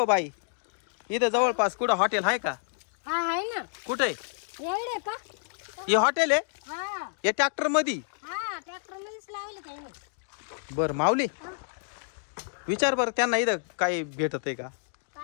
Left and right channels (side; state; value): right; silent; digital silence